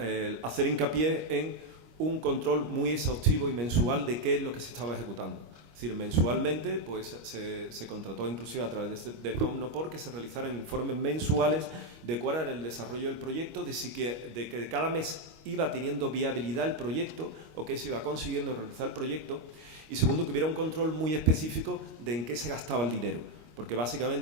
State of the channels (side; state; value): left; late; 25 ms